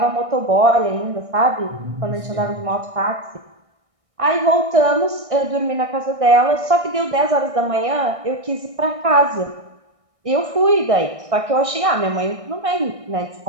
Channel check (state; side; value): late; left; 1.6 ms